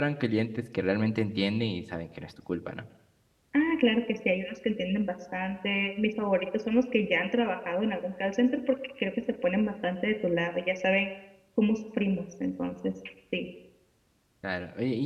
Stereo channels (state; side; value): identical; both; correlation 1.00